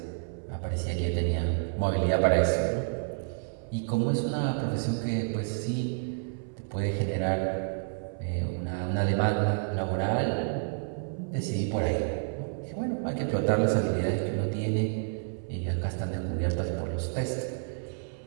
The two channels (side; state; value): left; silent; 58 dB below the other